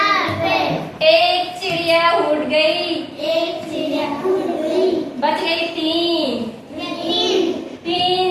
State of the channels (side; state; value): both; identical; correlation 1.00